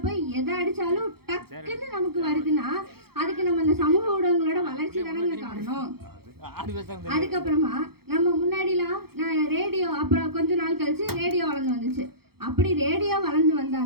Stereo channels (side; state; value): left; late; 0.95 ms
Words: போய் எதை அடிச்சாலும் டக்குன்னு நமக்கு வருதுன்னா அதுக்கு நம்ம இந்த சமூக ஊடகங்களோட வளர்ச்சி தானங்க காரணம். அதுக்கப்புறமா நம்ம முன்னாடிலாம் ரேடியோ, அப்புறம் கொஞ்ச நாள் கழிச்சு ரேடியோ வளர்ந்து வந்துச்சு. அப்படி ரேடியோ வளர்ந்து